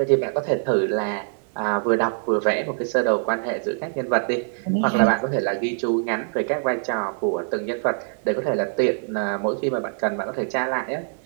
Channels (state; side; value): silent; left; digital silence